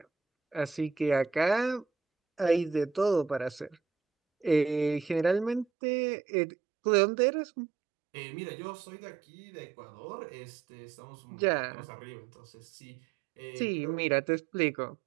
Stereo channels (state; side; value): drops out; left; at 5.7 s